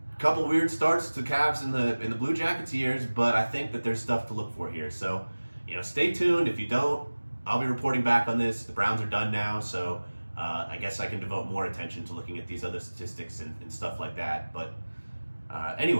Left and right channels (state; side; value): inverted; both; correlation -1.00